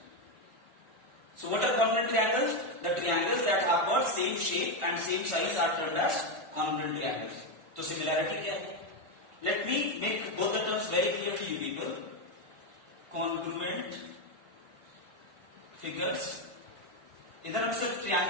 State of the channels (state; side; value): late; left; 1.4 ms